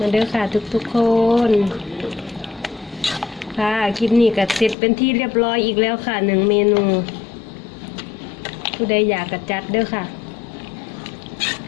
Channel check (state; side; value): drops out; right; at 4.8 s